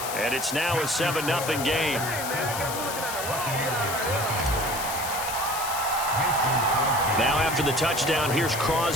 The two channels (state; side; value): noise; left; hiss, 6 dB below the sound